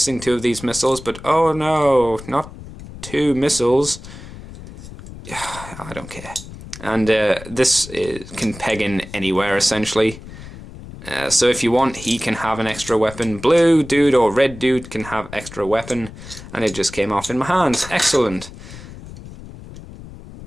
two of these missiles, but oh no, not two missiles. I don't care. And this can peg in anywhere, essentially. So if you want, he can have an extra weapon. Blue dude or red dude can have extra weapon. And it just came off in my hands. Excellent.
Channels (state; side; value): noise; left; rumble, 15 dB below the sound